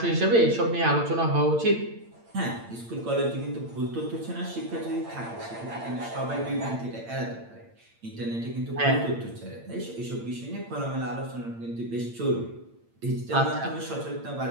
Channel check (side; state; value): left; late; 8.8 ms